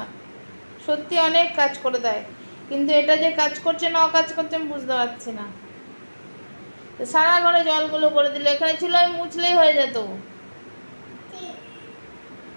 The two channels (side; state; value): both; inverted; correlation -1.00